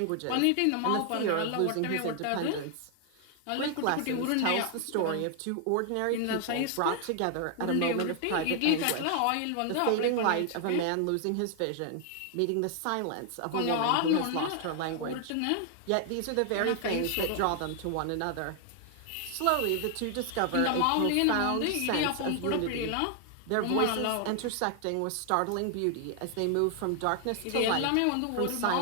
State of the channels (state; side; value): different; both; correlation 0.00